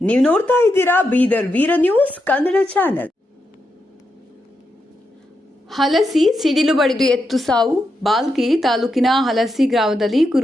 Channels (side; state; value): both; normal; correlation 0.84